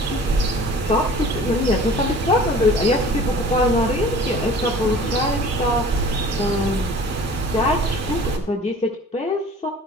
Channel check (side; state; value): both; normal; correlation 0.45